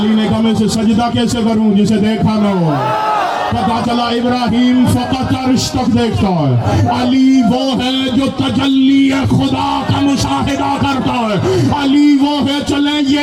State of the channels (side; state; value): both; identical; correlation 1.00